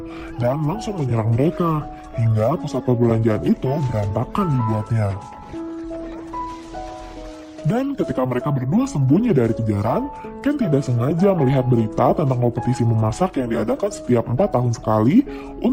dan langsung menyerang mereka hingga pusat perbelanjaan itu berantakan dibuatnya. Dan ketika mereka berdua sembunyi dari kejaran, Ken tidak sengaja melihat berita tentang kompetisi memasak yang diadakan setiap 4 tahun sekali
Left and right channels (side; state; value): both; identical; correlation 1.00